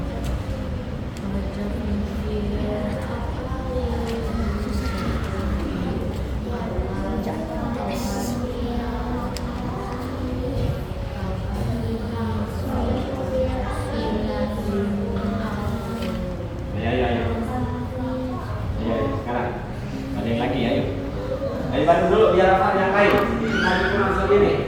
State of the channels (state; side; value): identical; both; correlation 1.00